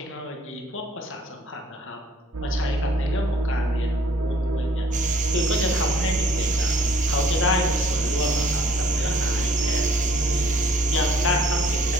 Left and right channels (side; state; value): both; normal; correlation 0.59